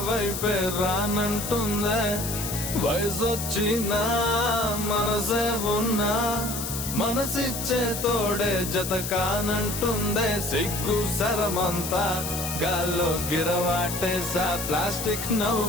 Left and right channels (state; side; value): noise; left; hiss, 5 dB below the sound